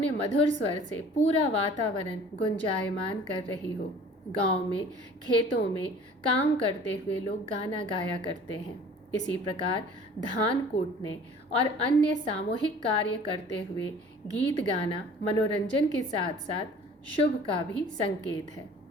मधुर स्वर से पूरा वातावरण गुंजायमान कर रही हो। गांव में खेतों में काम करते हुए लोग गाना गाया करते हैं। इसी प्रकार धान कूटने और अन्य सामूहिक कार्य करते हुए गीत गाना मनोरंजन के साथ साथ शुभ का भी संकेत है।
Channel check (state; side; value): normal; both; correlation 0.48